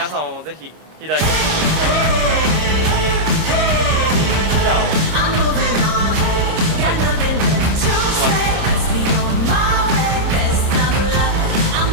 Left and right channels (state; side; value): late; left; 26 ms